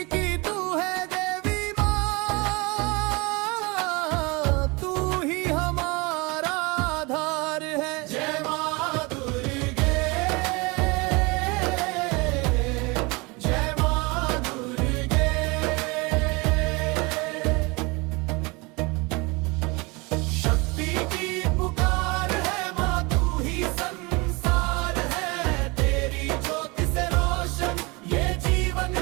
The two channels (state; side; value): quieter; left; 26.5 dB